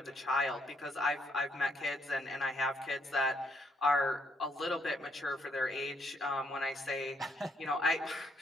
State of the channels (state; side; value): normal; both; correlation 0.73